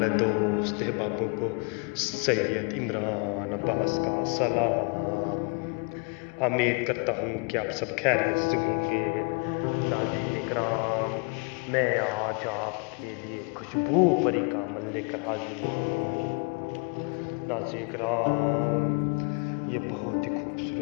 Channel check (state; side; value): quieter; right; 35.2 dB